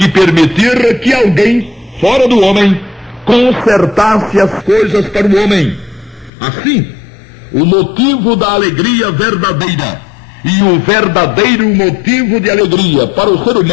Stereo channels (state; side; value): drops out; right; at 6.3 s